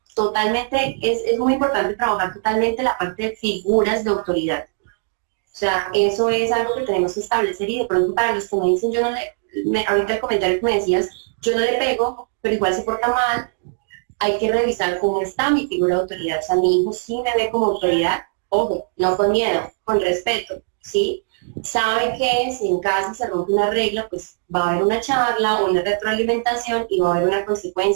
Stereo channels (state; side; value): silent; left; digital silence